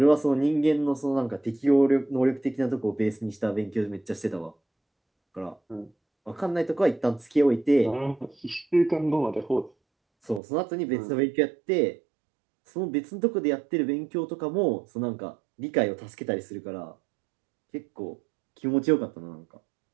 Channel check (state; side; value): drops out; left; at 10.4 s